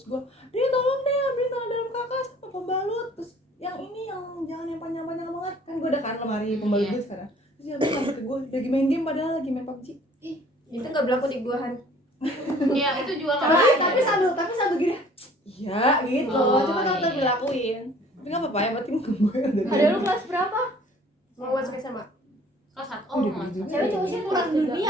gue dia tolong deh ambilin celana dalam kakak sama pembalut, terus yang ini yang jangan yang panjang-panjang banget kan gue udah kan lemari pembalut Iya. gue sekarang. Terus dia bilang sampai ke gue lagi main game padahal lagi main PUBG. itu nggak berlaku di gua Han. Iya, itu juga nggak Tapi sambil gini. Iya gitu. Oh, Cuma kalau iya. dilakuin. Tapi nggak apa-apa ya, berarti gue yang dari Ada lu kelas berapa? Mau masuk SMA. kelas 1. Oh, Oh, udah mas. gitu. Cewek cowok sih kurang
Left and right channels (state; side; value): normal; both; correlation 0.54